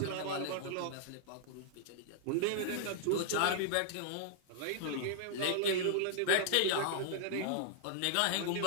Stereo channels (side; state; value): both; different; correlation -0.01